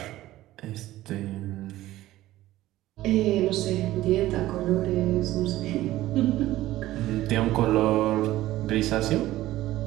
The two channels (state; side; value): quieter; left; 15.6 dB